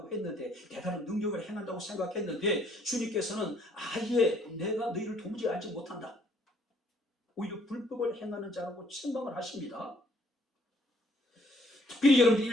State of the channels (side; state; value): both; normal; correlation 0.64